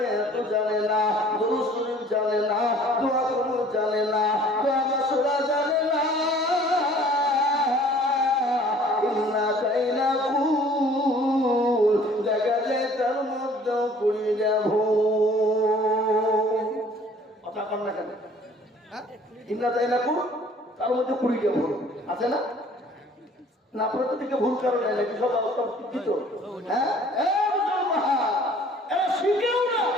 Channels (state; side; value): normal; both; correlation 0.53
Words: এত জানে না, দুরূদ শরীফ জানে না, দোয়া কবুল জানে না, দোয়া মাসুরা জানে না। ইন্না কাইনা কুল দেখা যায় তার মধ্যে 20টা ভুল। কথা কর না কেন? ইন্না কাইনা কুল তার মধ্যে 20টা ভুল আছে না? না আপনার তো দিকে ভুল কারণে নাকি সব অবস্থা শিক্ষিত? হ্যাঁ, এরা শিখেও না,